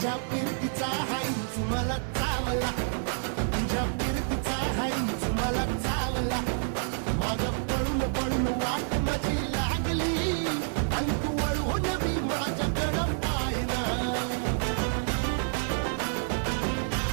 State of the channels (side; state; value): left; silent; 59 dB below the other